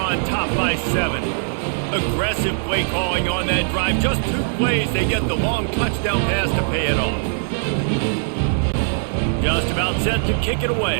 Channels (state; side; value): silent; left; digital silence